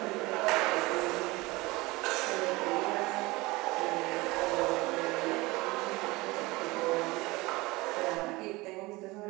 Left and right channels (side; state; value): left; quieter; 22.1 dB